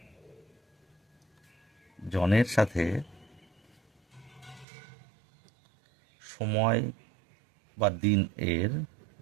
জনের সাথে সময় বা দিন এর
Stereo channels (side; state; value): left; drops out; at 4.7 s